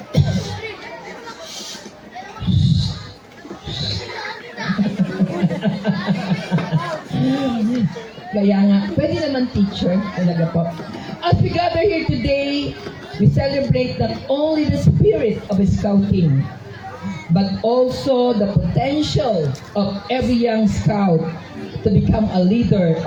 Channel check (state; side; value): identical; both; correlation 1.00